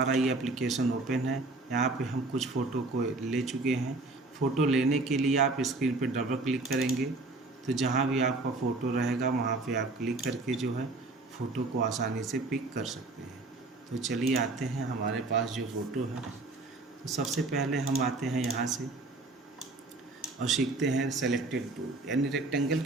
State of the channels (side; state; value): left; quieter; 3.2 dB